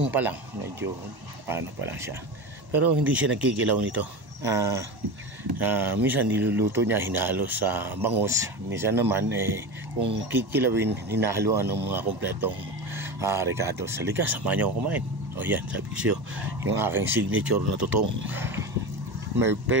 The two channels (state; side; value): late; left; 1.1 ms